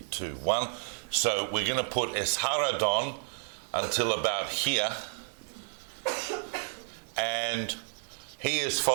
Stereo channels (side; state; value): left; silent; 57 dB below the other